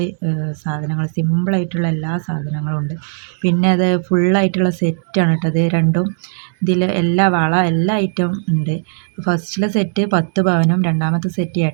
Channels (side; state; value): left; silent; digital silence